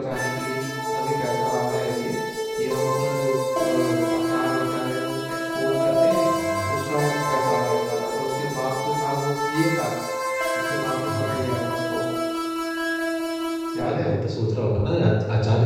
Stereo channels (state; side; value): identical; both; correlation 1.00